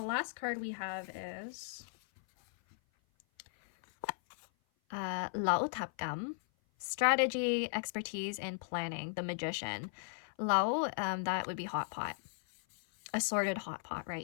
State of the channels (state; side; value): silent; right; 53 dB below the other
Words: last card we have is Lao Tap Gam, strategy, expertise, and planning, the magician. Lao, that would be hot pot. Assorted hot pot